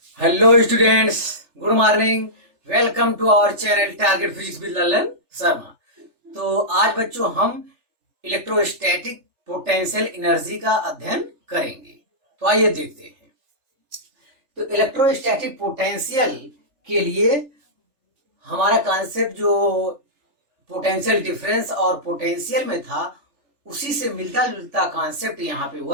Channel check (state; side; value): late; left; 3.4 ms